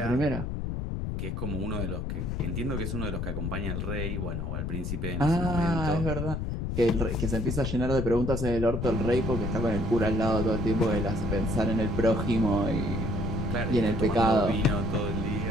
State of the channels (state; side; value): noise; left; rumble, 2 dB below the sound